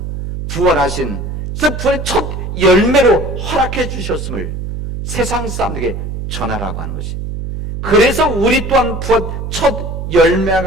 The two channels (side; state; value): right; noise; hum, 6 dB below the sound